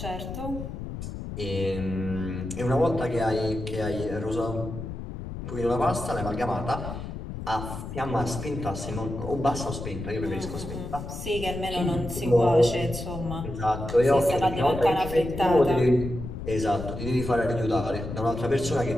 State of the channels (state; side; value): noise; left; rumble, 8 dB below the sound